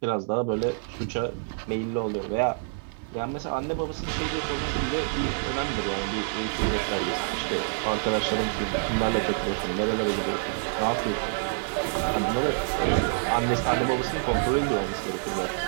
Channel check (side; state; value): left; silent; 59 dB below the other